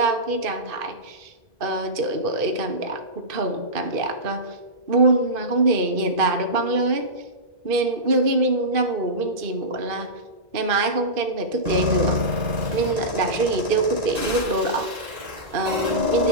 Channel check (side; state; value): left; late; 2.5 ms